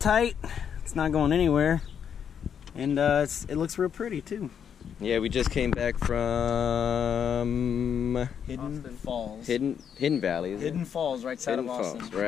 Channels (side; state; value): right; quieter; 8.0 dB